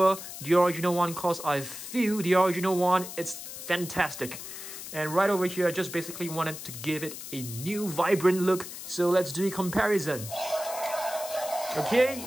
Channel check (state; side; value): noise; left; hiss, 10 dB below the sound